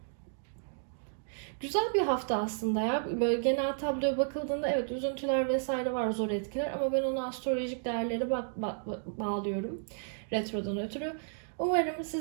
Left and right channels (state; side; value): silent; left; digital silence